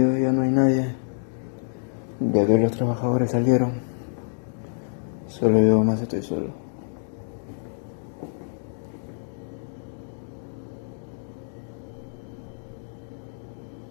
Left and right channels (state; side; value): silent; right; digital silence